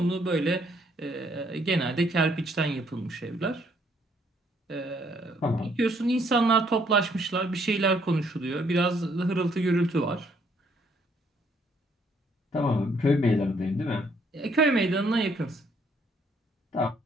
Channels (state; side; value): normal; both; correlation 0.68